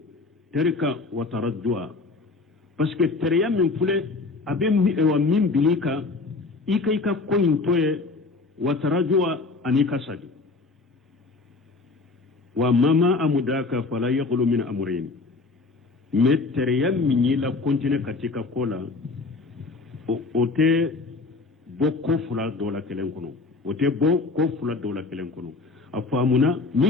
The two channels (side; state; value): right; quieter; 3.8 dB